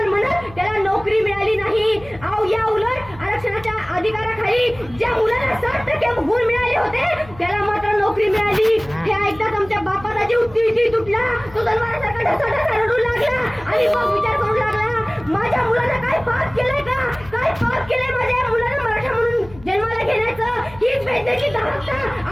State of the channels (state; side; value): noise; left; hum, 20 dB below the sound